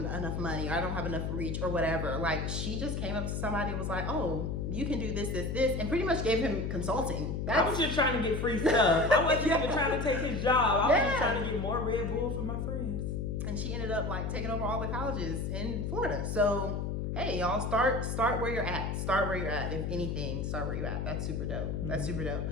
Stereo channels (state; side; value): noise; left; hum, 2 dB below the sound